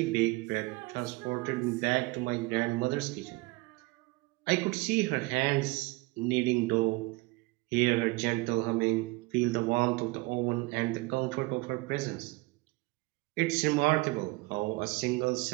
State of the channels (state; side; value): quieter; left; 23.7 dB